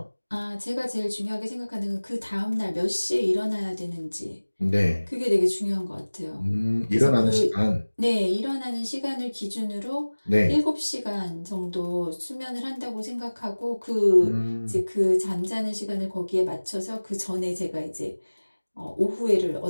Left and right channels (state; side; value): inverted; both; correlation -1.00